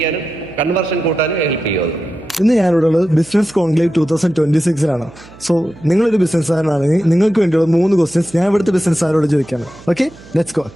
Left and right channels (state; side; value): noise; right; hum, 22 dB below the sound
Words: കൺവേർഷൻ കൂട്ടാനും ഹെൽപ്പ് ചെയ്യും അത്. ഇന്ന് ഞാനിവിടെ ഉള്ളത് ബിസിനസ് കോൺക്ലേവ് 2026 സോ നിങ്ങളൊരു ബിസിനസ്സുകാരനാണെങ്കിൽ നിങ്ങൾക്ക് വേണ്ടിയുള്ള 3 ക്വസ്റ്റ്യൻസ് ഞാൻ ഇവിടുത്തെ ബിസിനസ്സുകാരോട് ചോദിക്കാണ്. Okay, let's go.